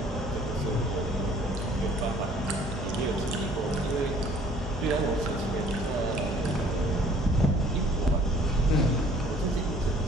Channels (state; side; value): normal; both; correlation 0.55